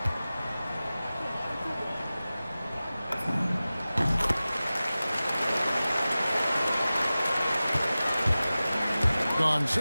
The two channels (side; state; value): both; inverted; correlation -0.96